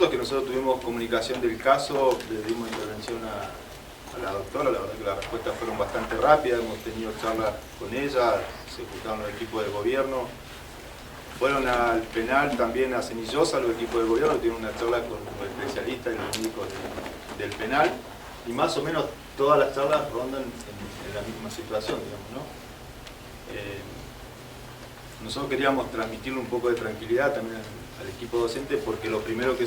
es que nosotros tuvimos comunicación del caso, le dimos intervención a la doctora, la verdad que las respuestas fueron bastante rápidas, hemos tenido charlas con ella, se juntaron los equipos de gobierno, fueron al penal también a Cenillosa, los equipos de gobierno, tuvieron una charla con los especialistas y los médicos del penal, y más o menos todas las charlas rondan en la misma situación, digamos, ¿no? Nosotros queríamos transmitirle un poco de tranquilidad también al equipo docente, porque lo primero que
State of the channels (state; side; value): identical; both; correlation 1.00